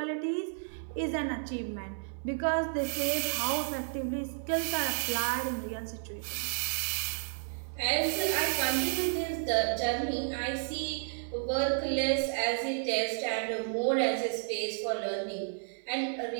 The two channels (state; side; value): silent; left; digital silence